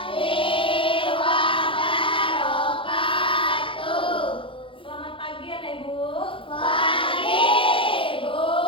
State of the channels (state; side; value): late; right; 0.25 ms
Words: wabarakatuh. Selamat pagi anak ibu. Pagi, Bu.